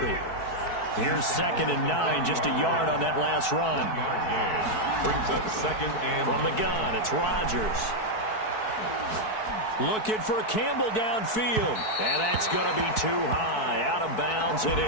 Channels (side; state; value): right; late; 4.6 ms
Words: Here's 2nd and 9, just a yard on that last run. Brings up 2nd and from the gun, it's Rodgers. Looking for Campbell downfield. And that's going to be too high. Out of bounds and